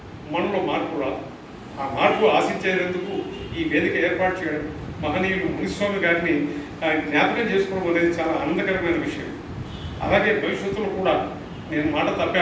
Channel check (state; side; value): identical; both; correlation 1.00